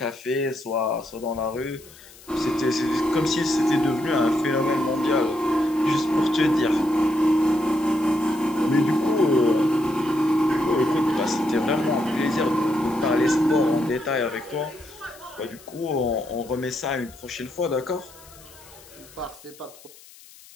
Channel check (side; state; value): left; noise; hiss, 22 dB below the sound